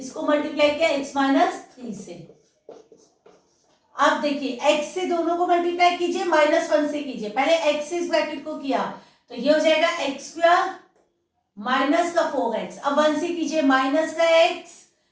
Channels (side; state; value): both; identical; correlation 1.00